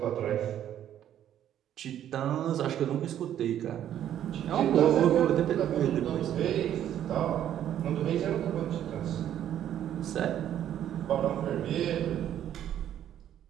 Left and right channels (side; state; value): left; quieter; 10.8 dB